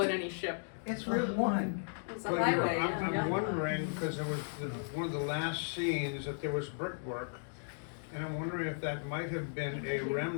in any ship. It's Route 1. It's a But highway, I'm yeah. wondering, because there was one of the last scenes that there was brickwork, and I'm wondering if that might have been a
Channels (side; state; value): right; silent; digital silence